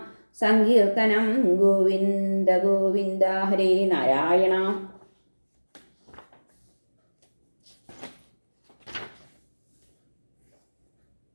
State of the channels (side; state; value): both; inverted; correlation -1.00